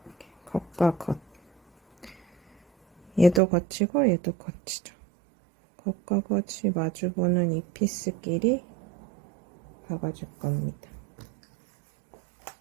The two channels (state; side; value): drops out; left; at 3.4 s